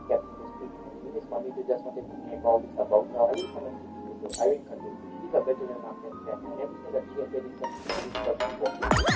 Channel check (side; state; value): both; identical; correlation 1.00